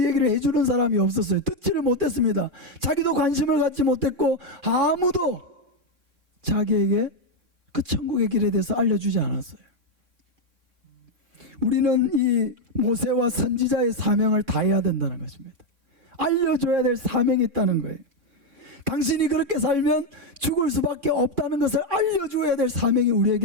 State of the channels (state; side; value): late; left; 2.4 ms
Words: 얘기를 해주는 사람이 없었어요. 듣지를 못했습니다. 자기도 관심을 갖지 못했고 아무도 자기에게 그 천국의 길에 대해서 알려주지 않았어요. 우리는 이 모세와 선지자의 사명을 다해야 된다는 것입니다. 알려줘야 될 사명이 있다는 거예요. 당신이 그렇게 살면 죽을 수밖에 없다는 것을 알려줘야 될 사명이